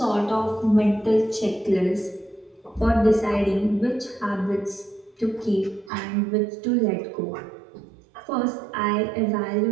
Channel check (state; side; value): drops out; left; at 5.9 s